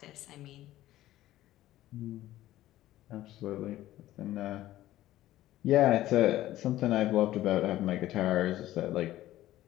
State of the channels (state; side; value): quieter; right; 14.8 dB